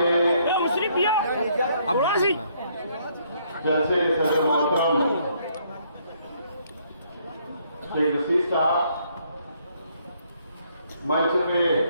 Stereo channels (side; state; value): both; inverted; correlation -0.68